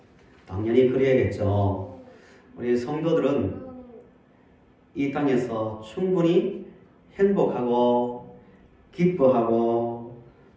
당연히 그래야겠죠. 우리 성도들은 이 땅에서 충분히 행복하고 기뻐하고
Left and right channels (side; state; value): both; identical; correlation 1.00